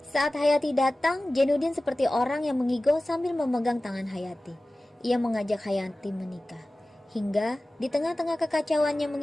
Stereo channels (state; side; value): normal; both; correlation 0.96